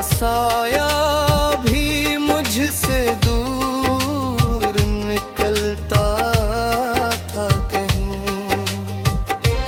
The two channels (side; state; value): both; identical; correlation 1.00